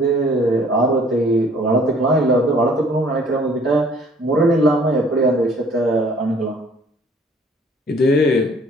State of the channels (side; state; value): both; normal; correlation 0.56